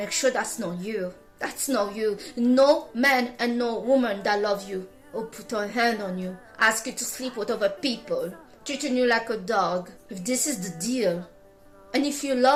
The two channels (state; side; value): identical; both; correlation 1.00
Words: sure that's not you. That's not you. No man and no woman that love you or put a hand on you, ask you to sleep with other people, treating you like a dog. If this is the deal, and if you